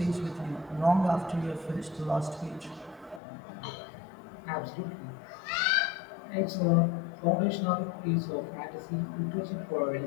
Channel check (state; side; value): drops out; right; at 3.2 s